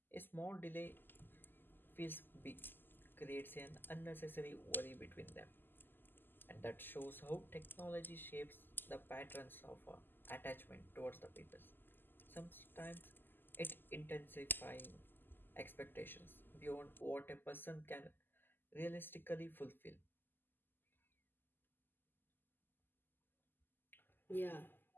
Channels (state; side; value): late; right; 0.094 ms